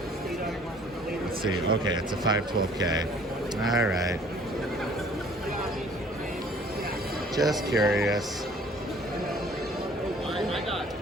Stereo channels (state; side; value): normal; both; correlation 0.55